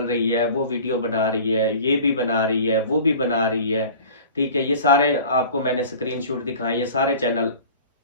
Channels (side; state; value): both; inverted; correlation -0.42